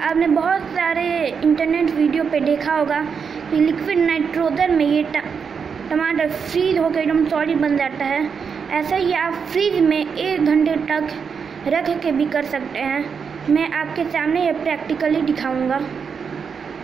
बहुत सारे इंटरनेट वीडियो पे देखा होगा कि लिक्विड नाइट्रोजन में ये टमाटर फ्रीज होकर एकदम सॉलिड बन जाता है। ऐसा ही आप फ्रीज में 1 घंटे तक रख के भी कर सकते हैं। मैं आपके सामने ये प्रैक्टिकली दिखाऊंगा।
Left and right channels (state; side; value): quieter; left; 6.2 dB